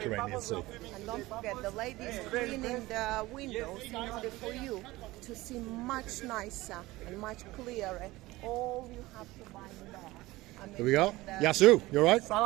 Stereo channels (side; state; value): left; quieter; 19.2 dB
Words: Sea. And don't forget, the ladies cleaning the windows in order for you to see much nicer and much clearer all you have to buy in there. Here we go. Yasu, you alright?